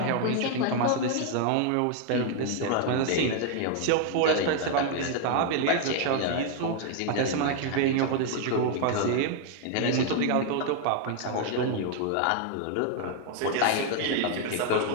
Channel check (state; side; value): different; both; correlation 0.00